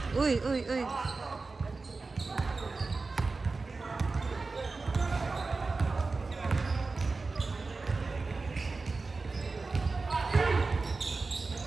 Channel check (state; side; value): quieter; left; 3.9 dB